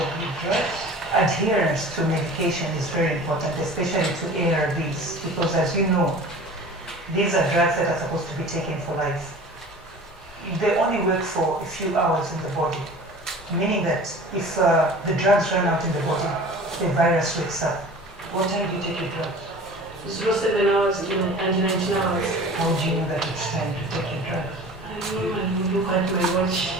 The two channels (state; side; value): normal; both; correlation 0.41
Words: of the drugs. Adherence to medication is very important, especially to ARVs, because as you know, these are drugs that are supposed to be taken for life. They only work for a few hours in the body. meaning that if the drugs run out in the body, the virus wakes up. What time do you take your drugs? 07 hours and 19 hours. How do you know that it's time to take your drugs? I normally look at my watch.